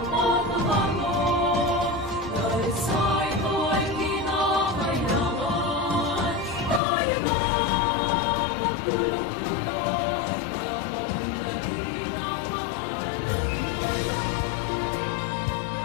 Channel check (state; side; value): drops out; right; at 6.8 s